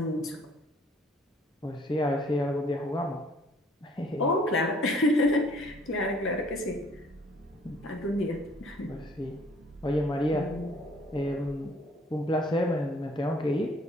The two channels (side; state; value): both; normal; correlation 0.58